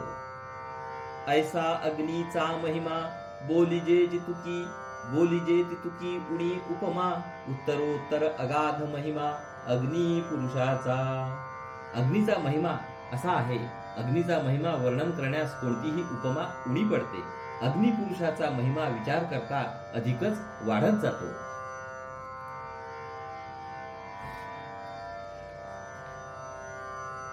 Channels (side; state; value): both; identical; correlation 1.00